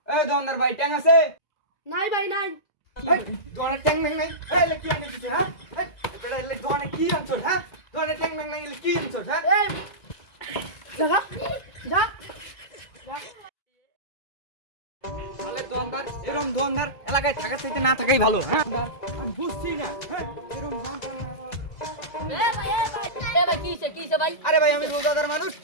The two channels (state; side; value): late; right; 2.0 ms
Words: এই দোকানদার ভাই ট্যাং আছে নাই ভাই নাই। এই দোকানে ট্যাং নাই নাই এই লে কি আনিছিস হ্যাঁ এই বেটা লে দোকানে কি আনছস হ্যাঁ দোকানে ট্যাং নাই নাই কি আনছস হ্যাঁ এই জাগা যা তাহলে দোকানদার এরকম দোকানদার এলাকায় থাকার চাইতে না থাকাই ভালো হ্যাঁ আমি বুঝছি না হ্যাঁ এরকম কিছে ভাই আরে ভাই আমি রোজাদার মানুষ